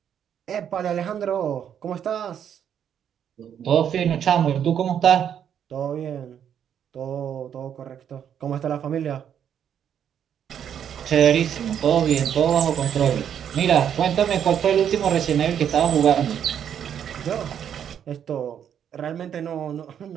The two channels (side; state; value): left; quieter; 8.9 dB